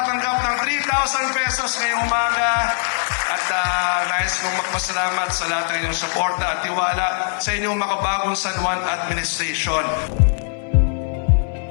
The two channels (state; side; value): silent; right; 65 dB below the other